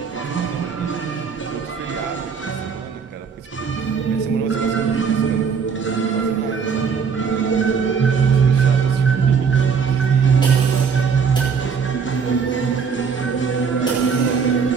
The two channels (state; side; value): quieter; left; 6.0 dB